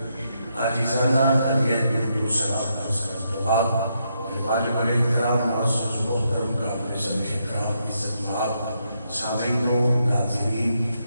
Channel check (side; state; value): both; inverted; correlation -0.79